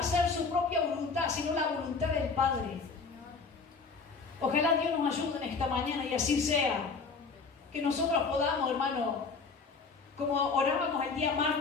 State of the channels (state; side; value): quieter; right; 4.7 dB